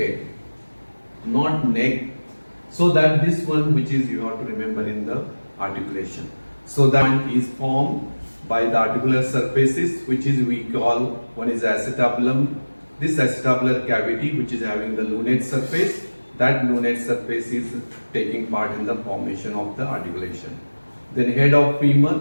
not neck. So that this one which is you have to remember in the articulation. So that one is formed by the articular surfaces, which is we call, one is acetabulum, this acetabular cavity which is having the lunate surface. That lunate surface is taking part in the formation of the articulation. Then head of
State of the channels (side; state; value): both; inverted; correlation -1.00